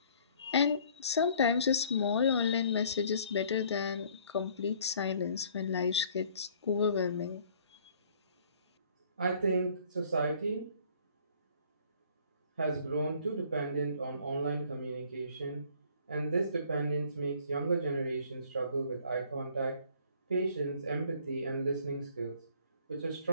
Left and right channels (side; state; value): both; inverted; correlation -0.57